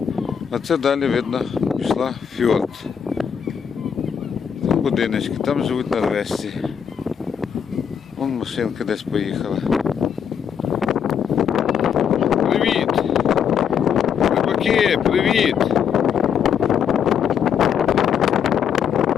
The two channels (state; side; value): quieter; right; 7.8 dB